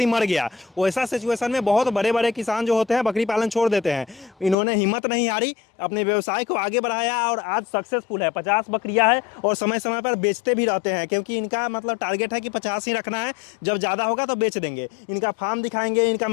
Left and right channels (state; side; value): drops out; right; at 4.5 s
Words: मर गया। वैसा सिचुएशन में बहुत बड़े बड़े किसान जो होते हैं बकरी पालन छोड़ देते हैं। इन्होंने हिम्मत नहीं हारी, अपने व्यवसाय को आगे बढ़ाया और आज सक्सेसफुल है। 50 बकरियाँ हैं और समय समय पर बेचते भी रहते हैं, क्योंकि इनका मतलब टारगेट है कि 50 ही रखना है, जब ज़्यादा होगा तो बेच देंगे। इनका फार्म दिखाएंगे, इनका